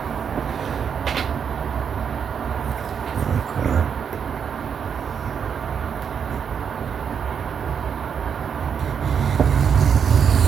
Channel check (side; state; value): left; quieter; 7.2 dB